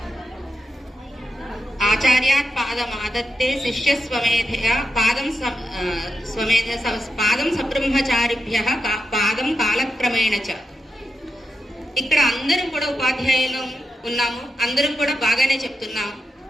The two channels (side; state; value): both; normal; correlation 0.87